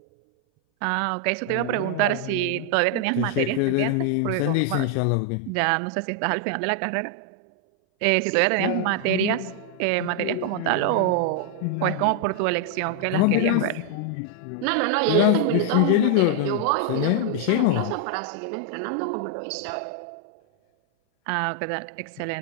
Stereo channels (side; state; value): both; different; correlation 0.00